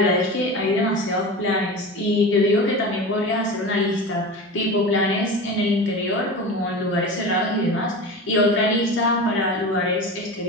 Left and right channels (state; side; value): normal; both; correlation 0.29